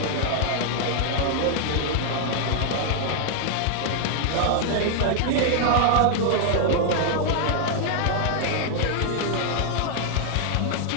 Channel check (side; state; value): both; different; correlation 0.00